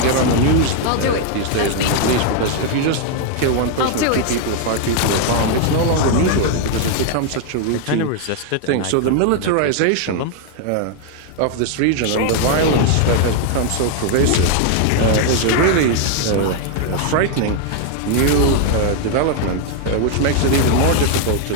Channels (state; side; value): different; both; correlation 0.00